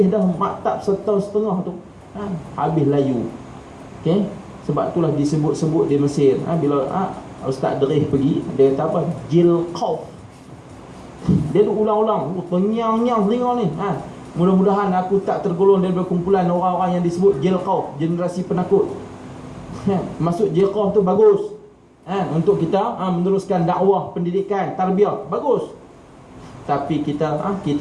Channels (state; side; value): identical; both; correlation 1.00